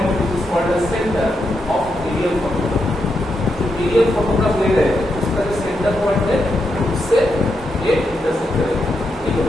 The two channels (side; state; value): both; normal; correlation 0.83